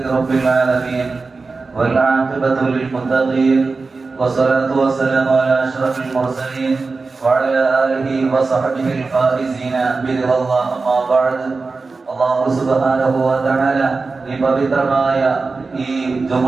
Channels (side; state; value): left; quieter; 4.0 dB